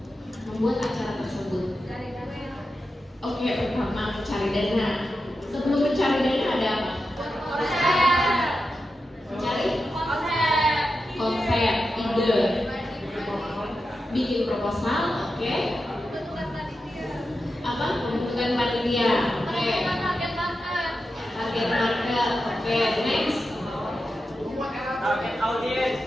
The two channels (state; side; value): normal; both; correlation 0.90